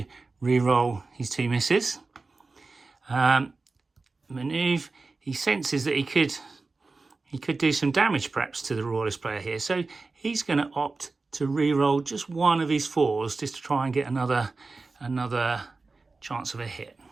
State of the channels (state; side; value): quieter; left; 3.8 dB